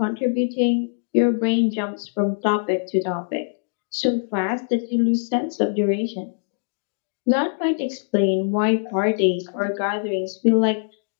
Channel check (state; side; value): silent; right; digital silence